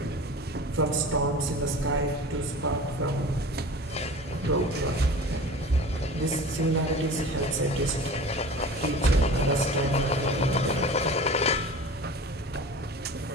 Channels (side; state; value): both; normal; correlation 0.38